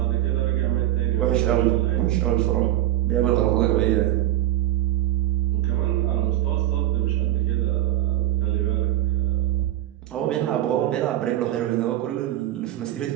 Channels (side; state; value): left; quieter; 14.0 dB